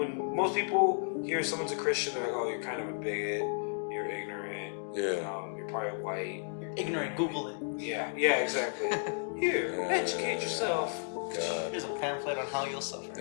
most people hear someone's a Christian, they're like, "Oh, you're kind of a bigot. You're ignorant. Yeah. You're probably white. You're ignorant. Google it. Yeah. Yeah. Exactly. Here, educate yourself." God. Here's a pamphlet on how you'll suffer.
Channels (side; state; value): right; silent; digital silence